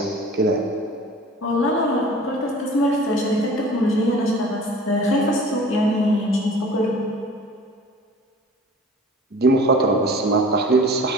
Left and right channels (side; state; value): both; normal; correlation 0.44